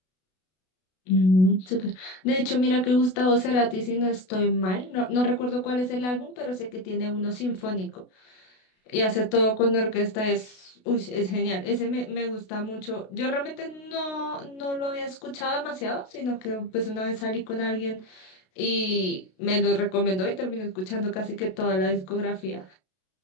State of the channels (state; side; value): late; right; 32 ms